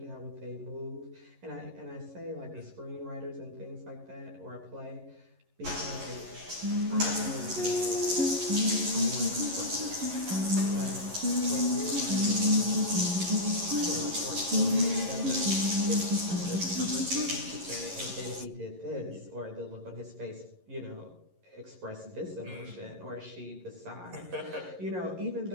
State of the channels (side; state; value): left; late; 11 ms